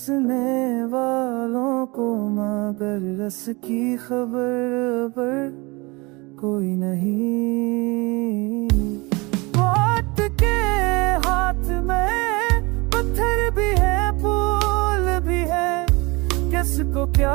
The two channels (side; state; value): left; quieter; 25.5 dB